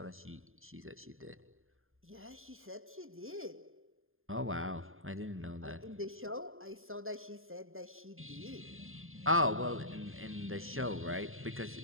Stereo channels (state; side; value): late; left; 0.60 ms